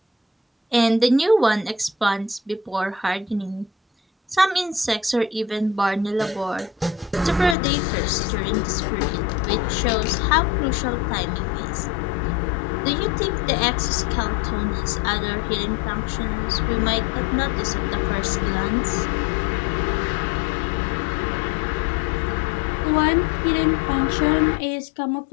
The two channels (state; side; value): drops out; right; at 7.6 s